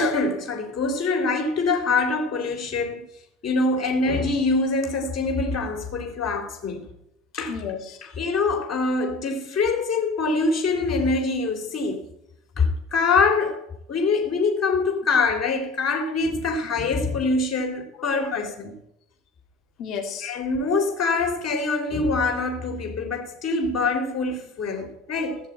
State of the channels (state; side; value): quieter; right; 3.4 dB